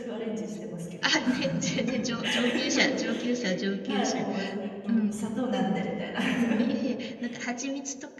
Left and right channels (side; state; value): both; identical; correlation 1.00